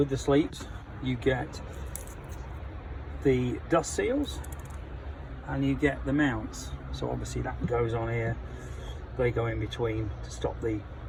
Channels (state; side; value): identical; both; correlation 1.00